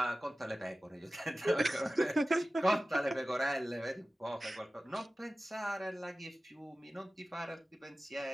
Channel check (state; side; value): normal; both; correlation 0.96